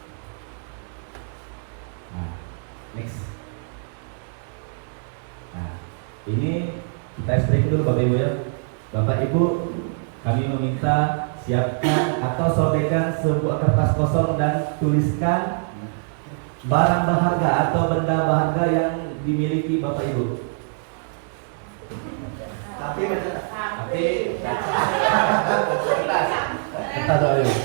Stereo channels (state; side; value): silent; left; digital silence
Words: Nah, next. Nah, ini kita speaking dulu Bapak Ibu ya. Bapak Ibu, kami meminta siapkan atau sobekkan sebuah kertas kosong dan tuliskan barang berharga atau benda berharga yang dimiliki Bapak Ibu.